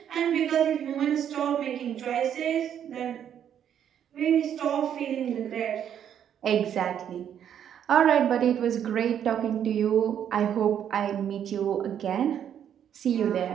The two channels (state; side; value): quieter; left; 9.3 dB